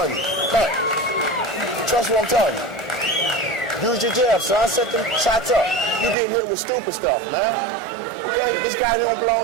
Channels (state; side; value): drops out; left; at 6.2 s